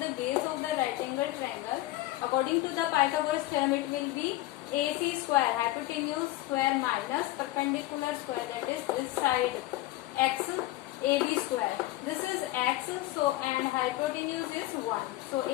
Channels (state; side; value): quieter; right; 17.0 dB